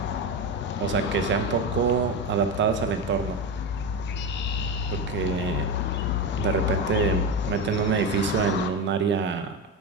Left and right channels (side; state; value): both; normal; correlation 0.18